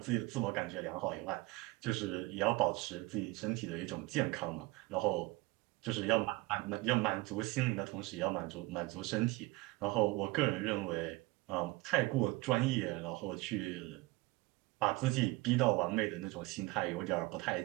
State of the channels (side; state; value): left; quieter; 21.5 dB